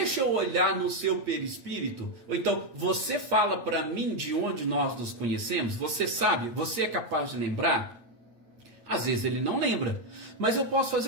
eu olhar no seu perispírito. Ou então, você fala para mim de onde nós nos conhecemos? Você sabe? Você é capaz de lembrar? Às vezes ele não lembra. Mas eu posso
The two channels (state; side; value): late; left; 8.6 ms